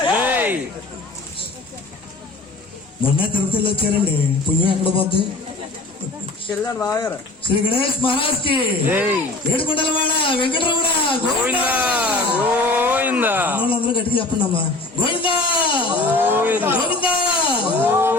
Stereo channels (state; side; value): quieter; right; 3.1 dB